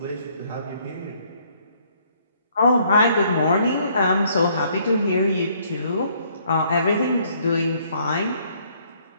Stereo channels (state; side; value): inverted; both; correlation -0.65